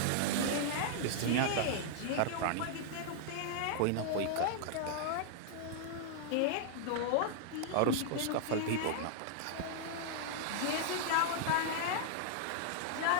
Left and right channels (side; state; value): both; different; correlation -0.01